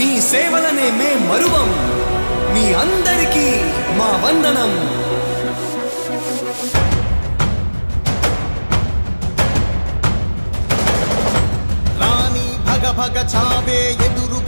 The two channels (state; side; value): inverted; both; correlation -1.00